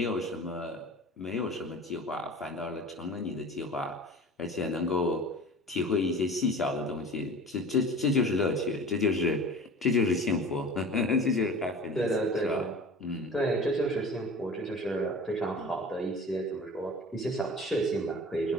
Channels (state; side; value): normal; both; correlation 0.39